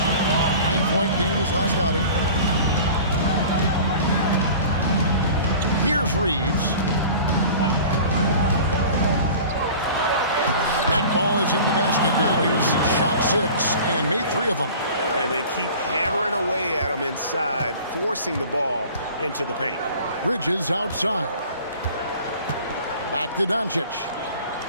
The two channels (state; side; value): inverted; both; correlation -0.42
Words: 9-point game his last outing. Here's Reeves. That ball is in the basket now. He's shot 6 and made 3 of them. And they keep hammering away at him inside, forcing the ball into the paint. Bridges outside. Back to Doncic.